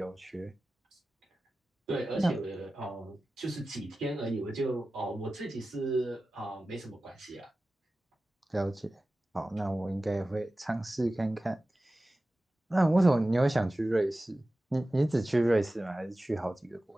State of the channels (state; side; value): normal; both; correlation 0.95